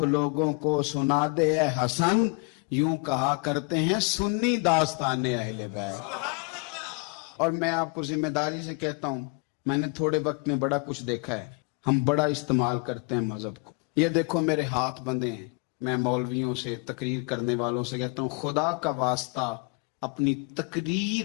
لوگوں کو سنا دے اے حسن، یوں کہا کرتے ہیں سنی داستان اہل بیت۔ اور میں آپ کو ذمہ داری سے کہتا ہوں، میں نے تھوڑے وقت میں بڑا کچھ دیکھا ہے، ہم بڑا استعمال کرتے ہیں مذہب کو۔ یہ دیکھو میرے ہاتھ بندھے ہیں، میں مولویوں سے، تقریر کرنے والوں سے کہتا ہوں خدا کا واسطہ اپنی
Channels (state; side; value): quieter; right; 32.3 dB